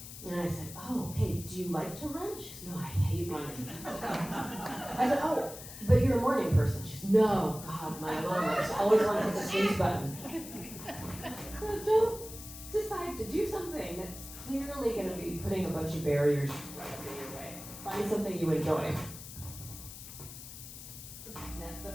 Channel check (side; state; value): left; noise; hiss, 13 dB below the sound